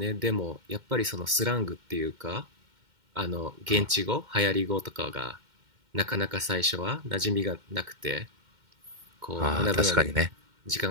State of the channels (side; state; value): left; late; 2.1 ms